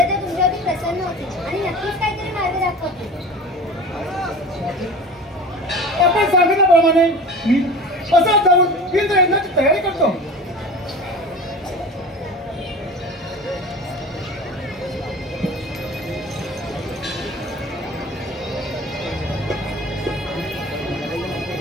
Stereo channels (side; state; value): both; normal; correlation 0.36